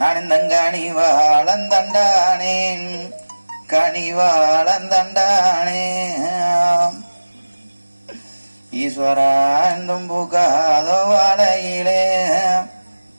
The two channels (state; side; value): inverted; both; correlation -1.00